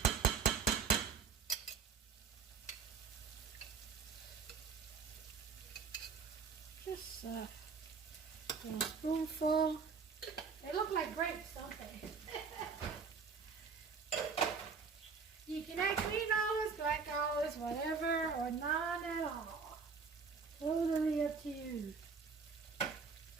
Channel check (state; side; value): quieter; left; 5.5 dB